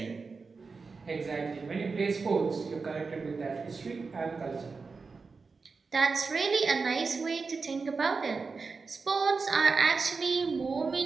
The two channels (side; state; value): left; quieter; 4.5 dB